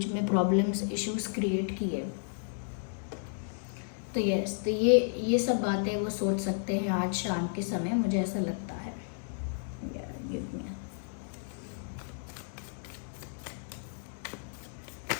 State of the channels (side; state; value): right; silent; digital silence